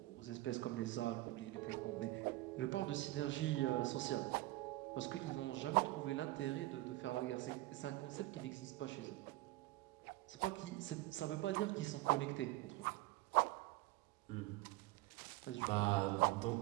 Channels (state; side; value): quieter; left; 18.6 dB